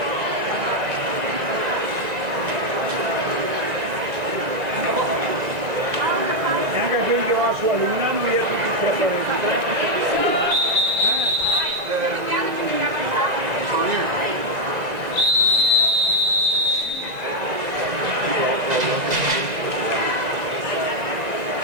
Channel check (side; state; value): left; late; 2.0 ms